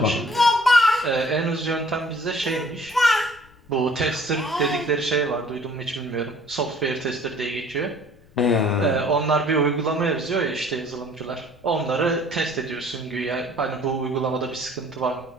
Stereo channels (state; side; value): noise; left; rumble, 28 dB below the sound